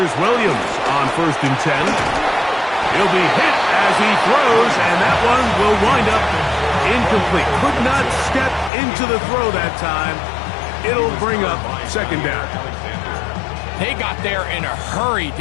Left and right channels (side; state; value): right; drops out; at 8.7 s